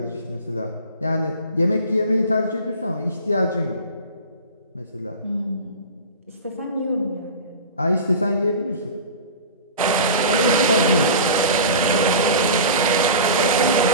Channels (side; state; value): both; inverted; correlation -0.33